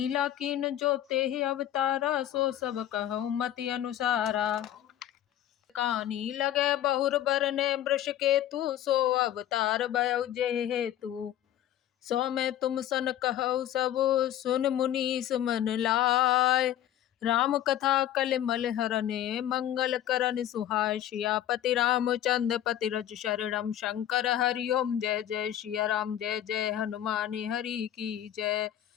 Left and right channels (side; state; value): right; quieter; 11.7 dB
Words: कीन जो तेहि अवतारा, सो सब कहूँ मति अनुसारा। कानी लगे बहुर बरने वृष केतु, सो अवतार भयउ जेहि हेतु। सो मैं तुम सन कहु सब, सुन मुनीस मन लाय। राम कथा कलिमल हरने, मंगल करन सुहाय। सियापति रामचंद्र पति रज शरणम, शंकर हरि ओम जय जय। सिया राम जय जय, हनुमान हरि की जय।